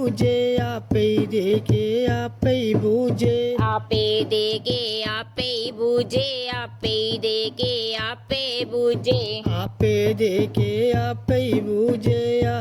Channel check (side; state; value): both; identical; correlation 1.00